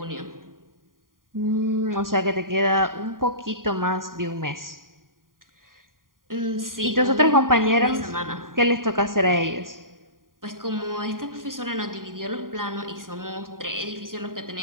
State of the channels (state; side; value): late; left; 0.91 ms